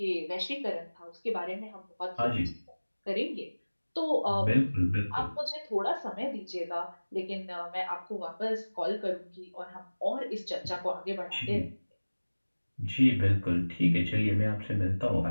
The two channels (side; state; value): both; inverted; correlation -1.00